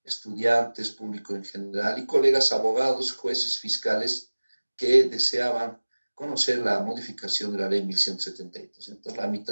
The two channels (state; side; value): inverted; both; correlation -1.00